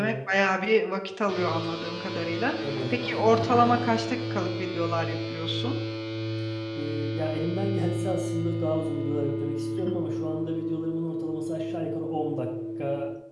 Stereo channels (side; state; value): both; identical; correlation 1.00